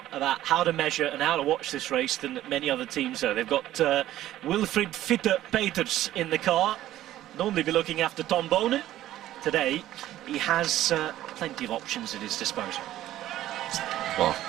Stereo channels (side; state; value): left; quieter; 13.7 dB